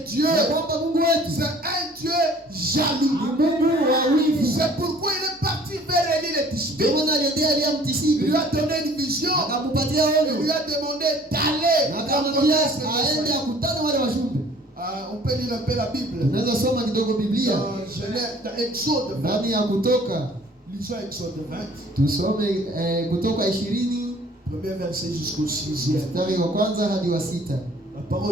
Dieu, ya kwamba Mungu wetu c'est un Dieu jaloux. ni Mungu wa wivu. C'est pourquoi il est parti vers Élie le Ndio Tishbite. maana aliendea Elia Il Mtisibi, lui a donné une vision. akampatia Il lui ono a demandé d'aller na rencontrer akamwambia ce aende messager. akutane wale wajumbe. On peut lire un peu la Bible. Tunaweza soma kidogo Biblia Dans Genèse, dans Exode 20. ndani ya Kutoka, Lisons Exode 20, tusome Kutoka 20 premier verset jusqu'au 6e. mstari wa kwanza hadi wa 6. La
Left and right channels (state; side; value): normal; both; correlation 0.53